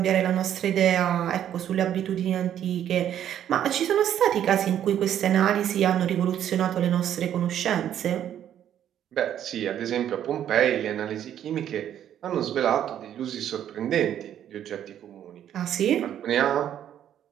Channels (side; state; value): left; quieter; 10.4 dB